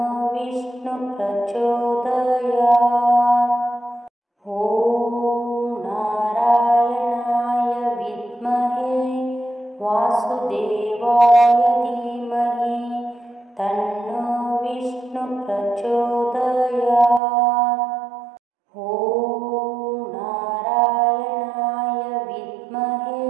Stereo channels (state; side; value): drops out; left; at 17.2 s